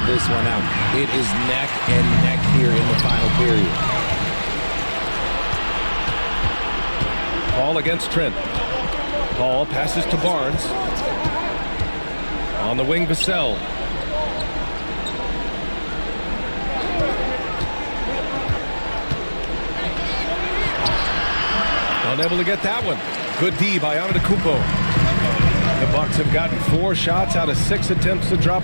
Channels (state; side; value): inverted; both; correlation -1.00